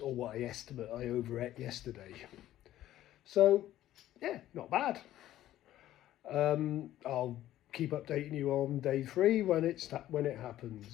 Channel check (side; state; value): right; quieter; 13.5 dB